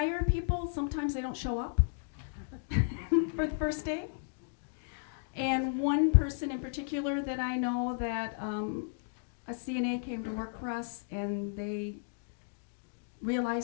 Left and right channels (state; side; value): silent; right; digital silence